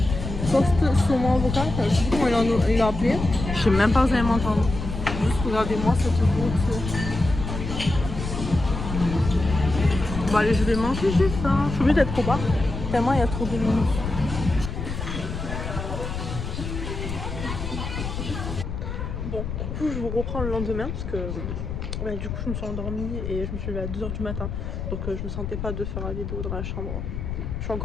toast saumon avocat, je sais pas comment il l'a appelé. Je sais même pas si vous allez m'entendre. Juste regardez-moi cette beauté. Bon allez je vais manger, j'ai faim. Je suis obligée d'être au bar. Tellement il y a trop de monde. Bon, du coup je vous reprends le lendemain parce que du coup je me suis endormie et je me suis levée à 2 h du matin. Donc je me sentais pas de faire la vidéo dans la chambre. Je suis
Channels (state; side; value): noise; left; rumble, 5 dB below the sound